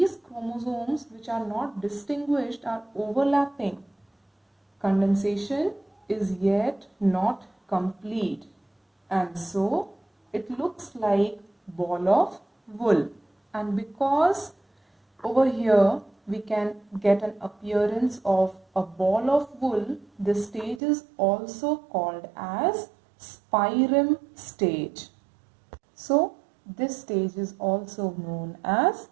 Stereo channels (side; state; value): left; drops out; at 20.8 s